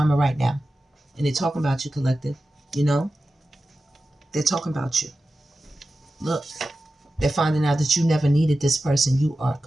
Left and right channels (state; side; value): normal; both; correlation 0.93